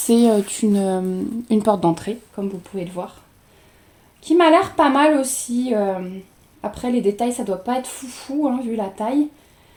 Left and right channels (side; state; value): both; identical; correlation 1.00